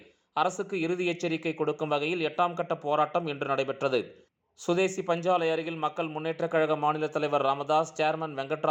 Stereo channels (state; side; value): identical; both; correlation 1.00